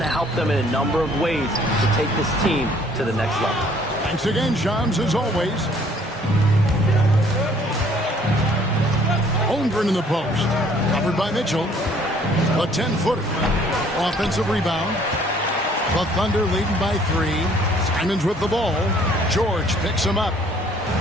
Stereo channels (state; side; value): normal; both; correlation 0.59